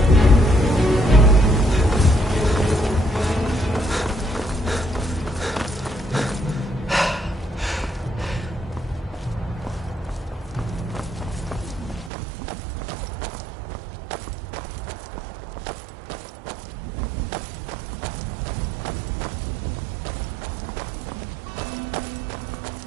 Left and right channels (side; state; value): left; drops out; at 12.1 s